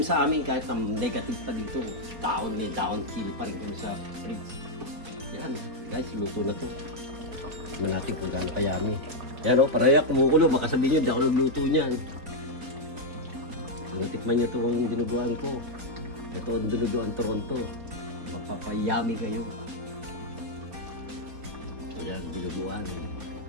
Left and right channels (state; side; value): late; left; 4.2 ms